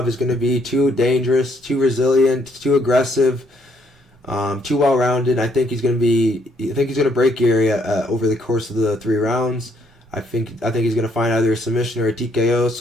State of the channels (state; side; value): normal; both; correlation 0.69